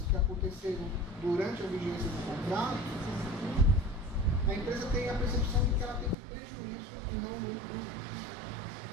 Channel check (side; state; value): left; drops out; at 6.2 s